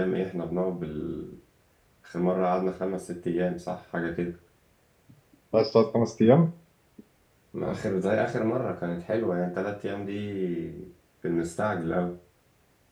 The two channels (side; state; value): both; identical; correlation 1.00